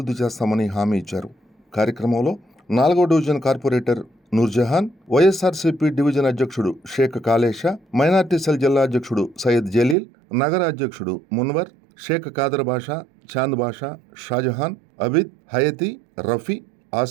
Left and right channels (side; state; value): left; drops out; at 10.0 s